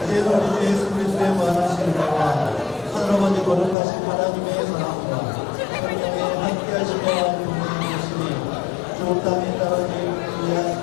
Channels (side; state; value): right; drops out; at 3.8 s